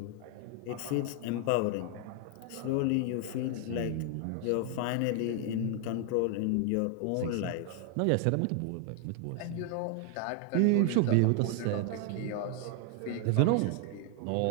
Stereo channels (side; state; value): both; different; correlation 0.00